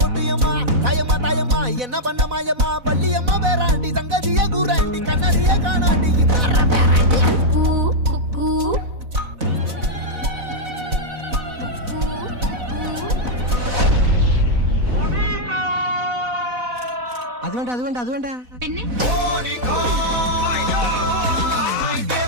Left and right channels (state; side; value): late; left; 4.0 ms